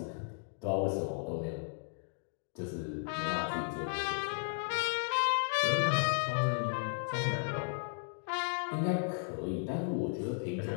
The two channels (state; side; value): silent; right; digital silence